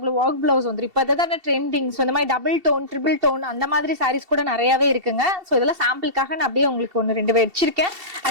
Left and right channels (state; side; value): late; left; 2.7 ms